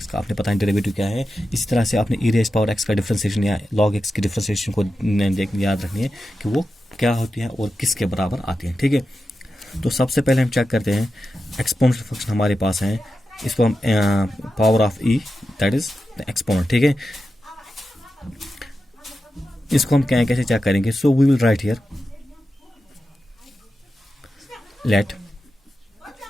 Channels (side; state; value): both; normal; correlation 0.91